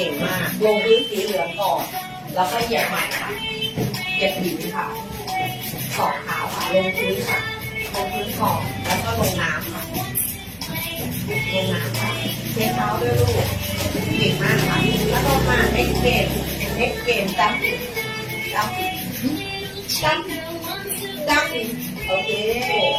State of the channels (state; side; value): identical; both; correlation 1.00